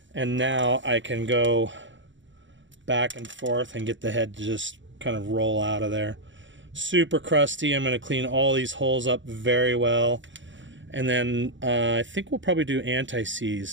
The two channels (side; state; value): left; late; 0.55 ms